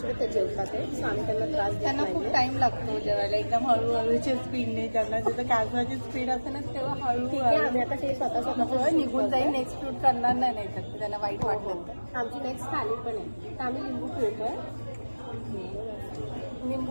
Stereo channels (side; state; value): both; inverted; correlation -1.00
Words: ते जेवतात आहे. सो आम्ही त्यांना त्रास देत त्यांना खूप नाही. टाइम लागतो जेवायला. एकदम हळूहळूच्या स्पीडने ज्यांना जिथं कॅसवाची स्पीड असते ना तेव्हा ठीक आहे. हळूहळू आम्ही आता ते स्वतः निघून जाईल. नेक्स्ट शूट करणार नाही तर त्यांना वाईट वाटलं तर. आमची नेक्स्ट थाली पण आहे. तर आम्ही लिंबू पिळतोय.